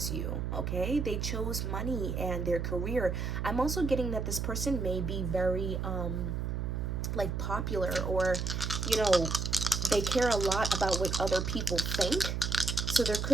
you. Okay, they chose money and their career. I'm also getting that this person may be very like popular, or, you know, they care a lot about what other people think. So there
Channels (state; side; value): noise; right; hum, 2 dB below the sound